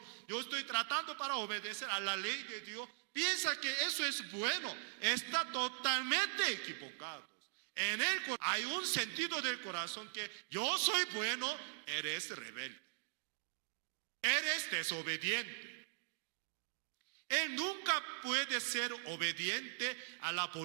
Yo estoy tratando para obedecer a la ley de Dios. Piensa que eso es bueno. Está totalmente equivocado. En él hay un sentido del corazón que yo soy bueno, eres rebelde. Eres desobediente. Él nunca puede ser obediente a la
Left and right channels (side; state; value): left; silent; digital silence